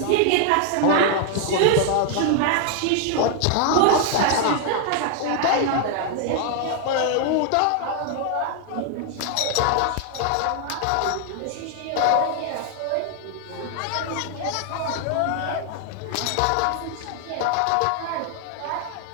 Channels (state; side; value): different; both; correlation 0.00